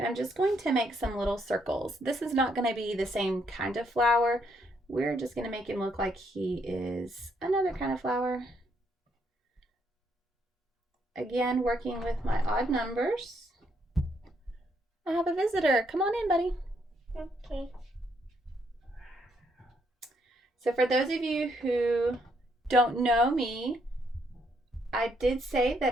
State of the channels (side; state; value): both; normal; correlation 0.73